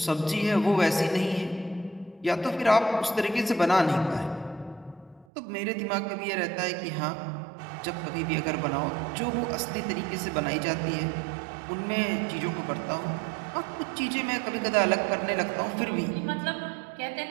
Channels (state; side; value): drops out; left; at 5.2 s